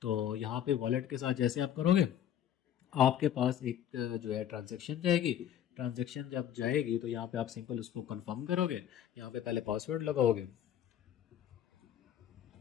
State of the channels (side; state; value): right; quieter; 10.4 dB